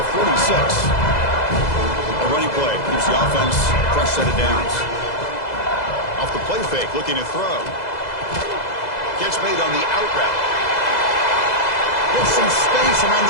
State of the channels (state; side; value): late; right; 2.0 ms